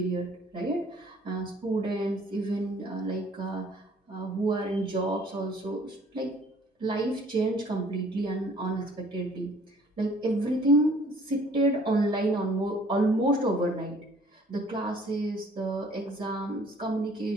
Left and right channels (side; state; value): both; normal; correlation 0.56